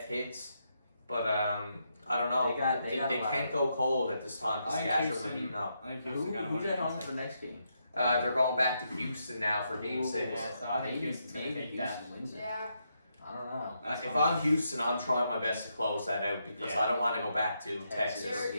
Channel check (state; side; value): inverted; both; correlation -0.80